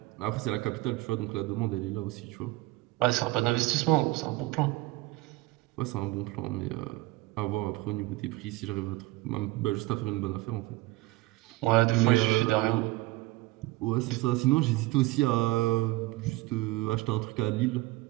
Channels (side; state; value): left; quieter; 19.7 dB